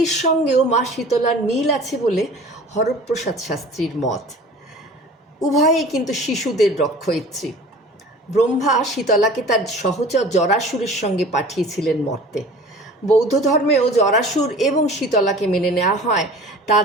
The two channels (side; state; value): both; normal; correlation 0.43